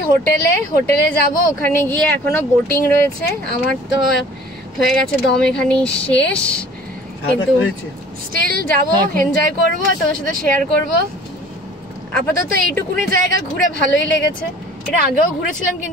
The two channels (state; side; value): normal; both; correlation 0.49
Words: হোটেলে যাব। ওখানে গিয়ে এখনো বোটিং রয়েছে, আমার তো হয়ে গেছে দম এখানেই শেষ, কিন্তু স্টিল যাব, এনজয় করব, তোমার সাথে শেয়ার করব। আপাতত এইটুকুনি জায়গা ঘুরে ভালোই লেগেছে। এটা আগেও ঘুরেছিলাম,